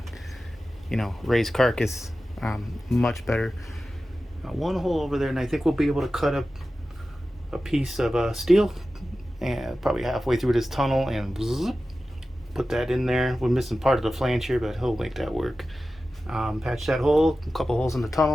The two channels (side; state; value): both; normal; correlation 0.94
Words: you know, raised carcass. Much better. One hole over there, and I think we'll be able to cut up a piece of steel, and probably halfway through this tunnel, and zip, put that in there. We're missing part of the flange here, but he'll make that work. Patch that hole, a couple holes in the